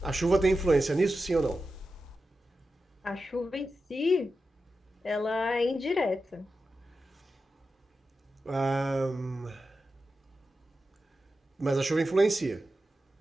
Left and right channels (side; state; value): both; normal; correlation 0.91